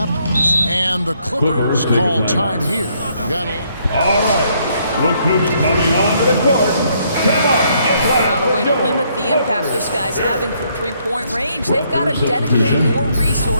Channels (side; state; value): both; inverted; correlation -0.70